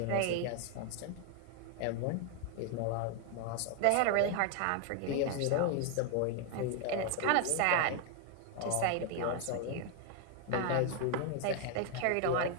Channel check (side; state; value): both; different; correlation 0.01